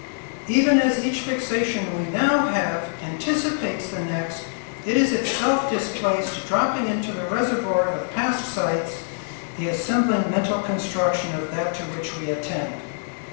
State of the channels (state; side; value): silent; right; 58 dB below the other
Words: Even as each fixation we now have anticipates the next, it is itself displaced, dropping into the reservoir of past sights, the assembling mental construction of that to which we attend.